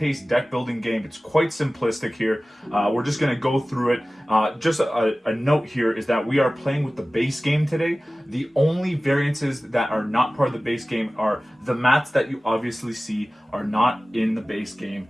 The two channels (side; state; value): both; normal; correlation 0.97